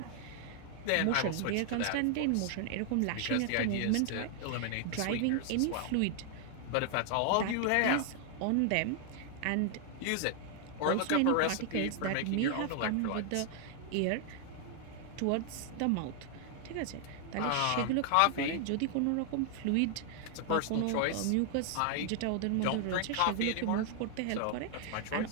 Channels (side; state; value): both; different; correlation 0.00